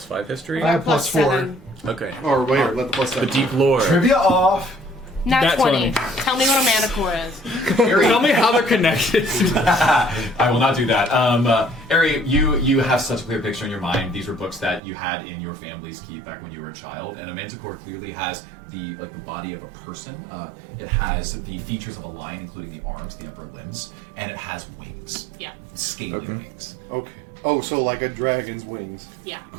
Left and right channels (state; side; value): drops out; left; at 14.8 s